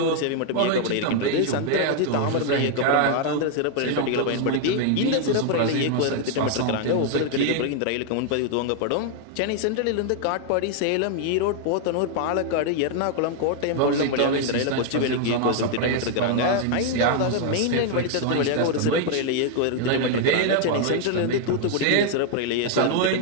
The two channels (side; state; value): both; different; correlation 0.00